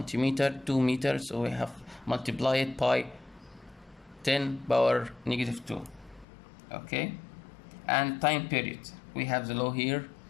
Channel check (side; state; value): right; drops out; at 6.2 s